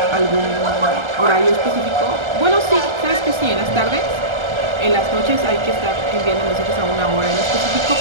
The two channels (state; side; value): late; left; 1.3 ms